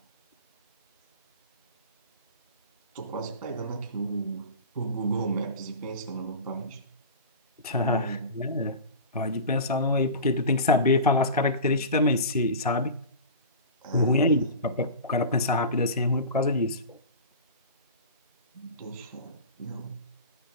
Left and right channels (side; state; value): both; inverted; correlation -0.32